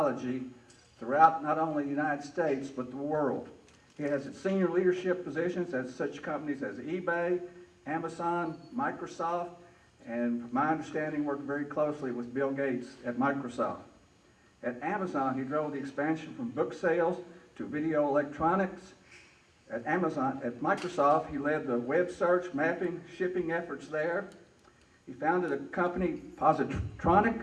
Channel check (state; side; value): identical; both; correlation 1.00